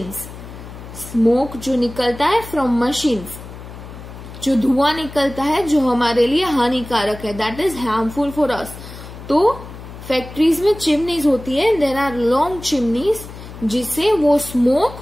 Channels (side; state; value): left; noise; hum, 14 dB below the sound